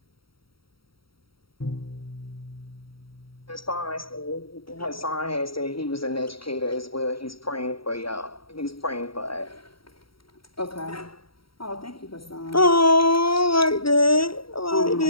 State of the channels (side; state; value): right; late; 0.75 ms